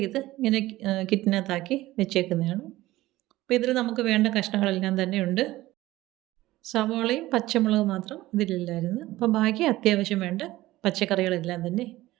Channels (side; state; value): left; quieter; 17.1 dB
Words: ഇങ്ങനെ കിറ്റിനകത്താക്കി വെച്ചേക്കുന്നതാണ്. അപ്പോൾ ഇതിൽ നമുക്ക് വേണ്ട കഷ്ണങ്ങളെല്ലാം തന്നെ ഉണ്ട്. സവാളയും പച്ചമുളകും മാത്രം ഇതിലില്ലായിരുന്നു. അപ്പോൾ ബാക്കി അത്യാവശ്യം വേണ്ട പച്ചക്കറികളെല്ലാം തന്നെ